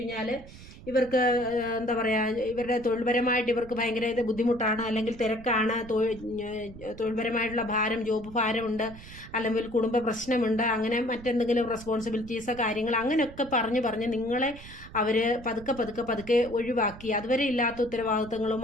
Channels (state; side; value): noise; right; rumble, 17 dB below the sound